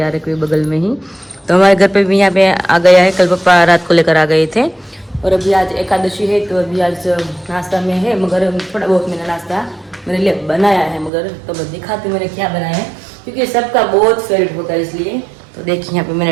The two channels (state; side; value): drops out; left; at 11.1 s